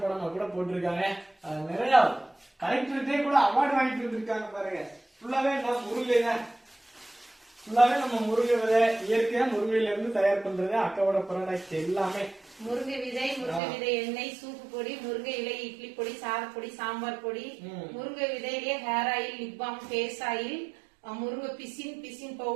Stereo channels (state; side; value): drops out; left; at 13.6 s